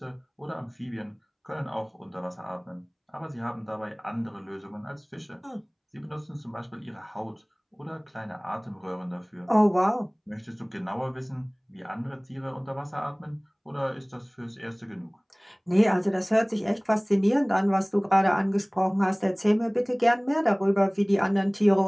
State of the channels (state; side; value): identical; both; correlation 1.00